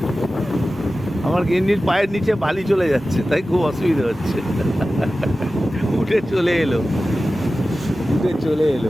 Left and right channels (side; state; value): both; normal; correlation 0.95